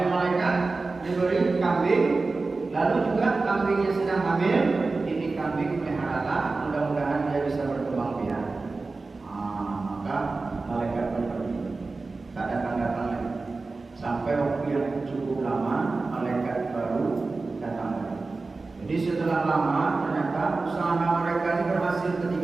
malaikat diberi kambing, lalu juga kambingnya sedang hamil. Ini kambing peliharalah, mudah-mudahan dia bisa berkembang biak. Maka malaikat pun pergi, tak datang-datang lagi. Sampai waktu yang cukup lama, malaikat baru datang lagi. Jadi setelah lama, ternyata usaha mereka ini berhasil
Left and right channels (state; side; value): quieter; left; 3.7 dB